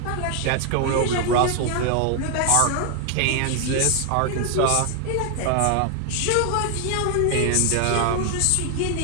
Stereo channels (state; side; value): different; both; correlation 0.00